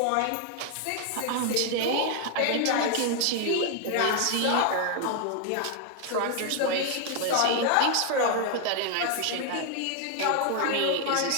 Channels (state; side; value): different; both; correlation 0.00